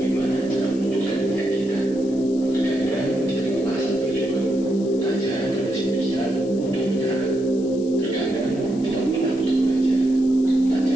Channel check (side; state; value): left; noise; hiss, 22 dB below the sound